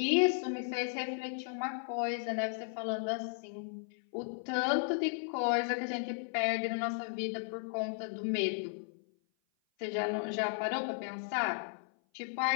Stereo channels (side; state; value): right; silent; 54 dB below the other